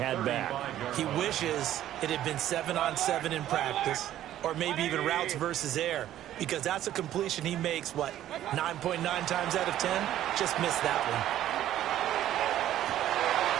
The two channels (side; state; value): left; quieter; 12.5 dB